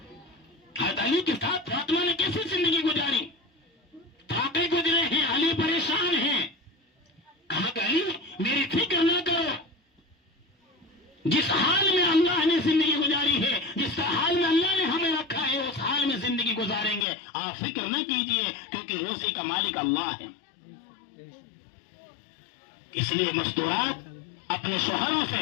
حضرت علی کے ساتھ فاطمہ نے کیسے زندگی گزاری؟ تھاکے گزرے ہیں، علی پریشان ہیں. کہا کہ علی میری فکر نہ کرو، جس حال میں اللہ نے زندگی گزاری ہے، جس حال میں اللہ نے ہمیں رکھا ہے، اس حال میں زندگی گزاریں گے. آپ فکر نہ کیجئے، کیونکہ روزی کا مالک اللہ ہے. اس لیے مستورات اپنے شوہروں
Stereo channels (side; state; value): right; drops out; at 17.1 s